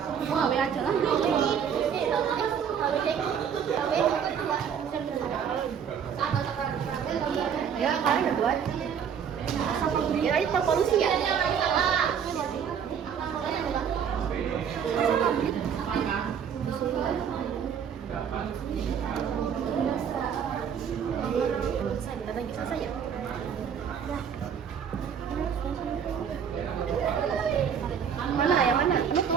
Oh, ambil aja lah. Ya, kalian udah buat. Ya, itu polusi ya. Selesai, bentar lagi selesai ya.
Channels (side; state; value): left; quieter; 7.8 dB